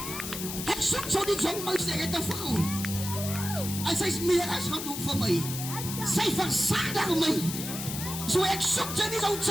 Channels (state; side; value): noise; left; hiss, 6 dB below the sound